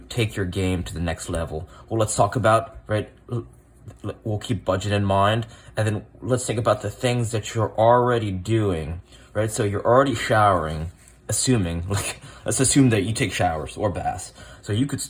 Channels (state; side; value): identical; both; correlation 1.00